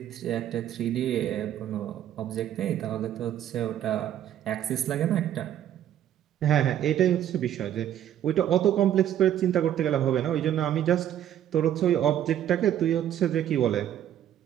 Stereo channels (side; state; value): left; quieter; 11.0 dB